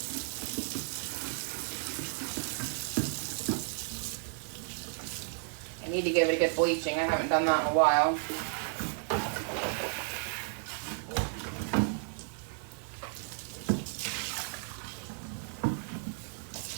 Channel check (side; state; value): left; silent; 56 dB below the other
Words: I need to give it a good bleaching. I haven't done that in a while.